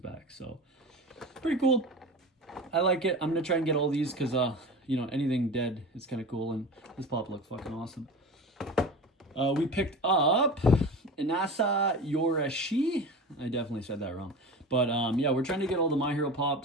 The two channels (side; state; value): both; normal; correlation 0.32